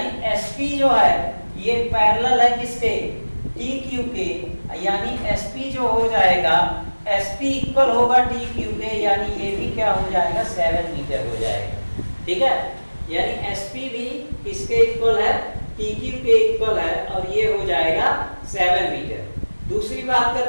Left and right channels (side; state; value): both; inverted; correlation -1.00